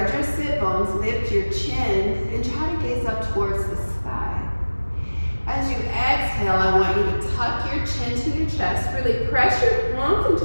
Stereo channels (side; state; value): both; inverted; correlation -1.00